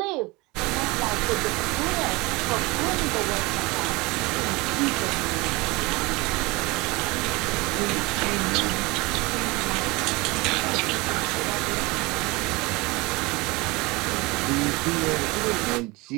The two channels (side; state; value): left; quieter; 24.0 dB